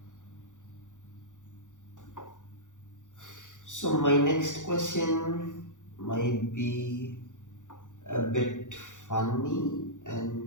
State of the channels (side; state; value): right; late; 0.86 ms